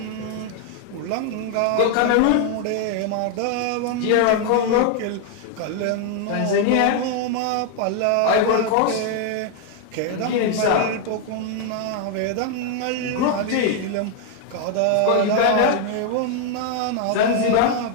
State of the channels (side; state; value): both; different; correlation 0.00